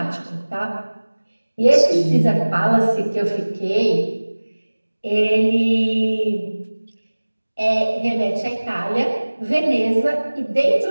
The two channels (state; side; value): inverted; both; correlation -1.00